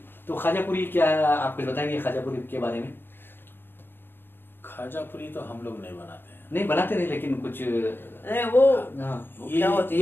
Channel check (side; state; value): right; late; 0.10 ms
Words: तो खाजा पूरी क्या, आप कुछ बताएंगे खाजा पूरी के बारे में? खाजा पूरी तो हम लोग नहीं बनाते हैं। नहीं बनाते नहीं, लेकिन कुछ अरे वो हाँ, क्या होती